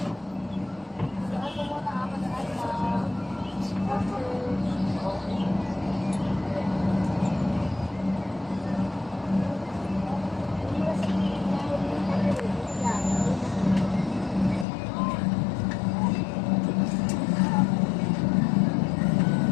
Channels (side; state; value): right; drops out; at 14.7 s